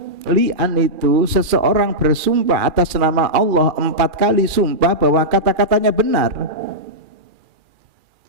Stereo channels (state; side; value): late; left; 2.4 ms